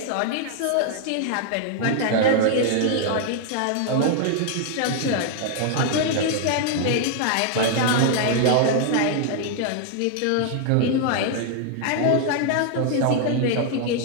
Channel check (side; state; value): both; different; correlation 0.00